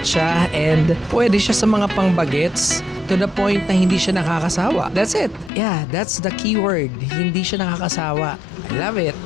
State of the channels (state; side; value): drops out; right; at 5.5 s